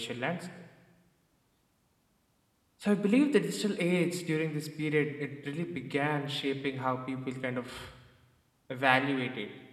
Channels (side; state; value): both; identical; correlation 1.00